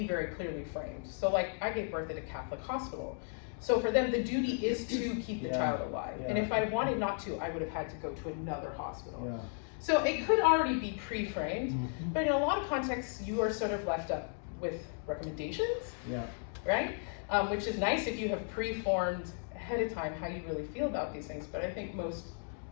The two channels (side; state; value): right; silent; 54 dB below the other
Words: very clearly framed. So like, I gave birth at a Catholic hospital. So for them, the duty is to keep the child alive. And if I wanted not to, I would have had to go to another hospital. So it could already be pre-framed, but in a lot of contexts, you are sort of left up with recommendations, right? Which is nice if you have pre-formed ahead of time how you really feel about these things, but I think most